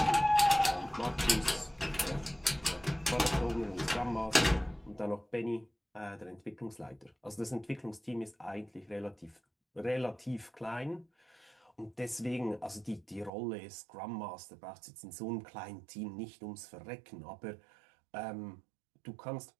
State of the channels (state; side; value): drops out; left; at 13.3 s